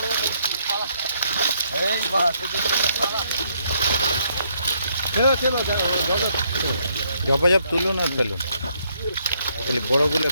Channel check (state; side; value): inverted; both; correlation -0.72